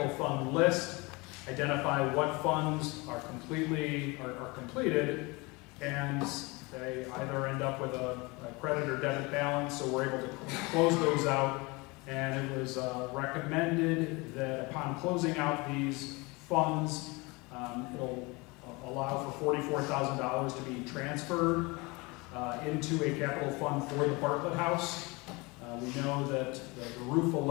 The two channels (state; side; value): quieter; right; 25.6 dB